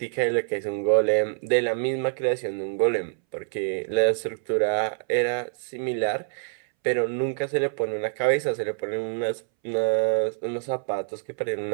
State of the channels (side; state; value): left; silent; 61 dB below the other